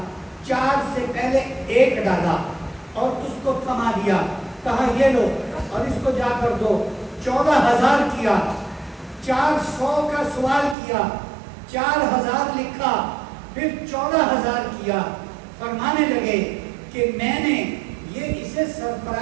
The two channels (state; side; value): drops out; left; at 10.8 s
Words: 4 سے پہلے 1 ڈالا اور اس کو کما دیا، کہا یہ لو اور اس کو جا کر دو، 14000 کیا، 400 کا سوال کیا، 4000 لکھا، پھر 14000 کیا۔ فرمانے لگے کہ میں نے یہ اسے